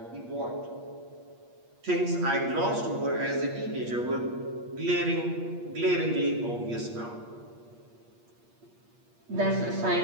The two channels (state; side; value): late; left; 8.5 ms